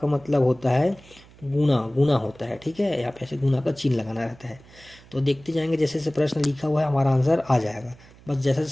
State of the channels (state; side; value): noise; right; hum, 24 dB below the sound